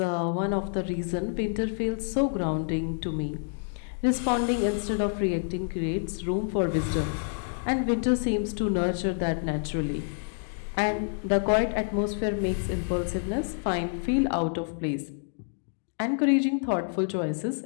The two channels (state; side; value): silent; right; digital silence